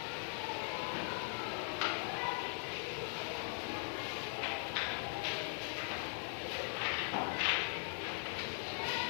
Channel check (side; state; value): right; silent; 51 dB below the other